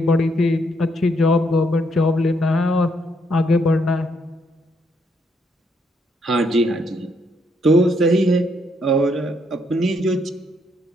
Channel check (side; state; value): both; normal; correlation 0.74